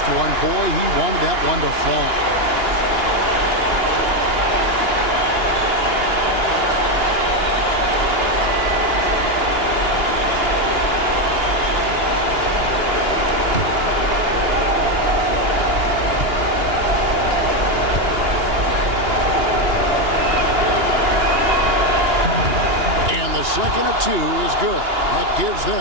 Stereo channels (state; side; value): late; left; 2.9 ms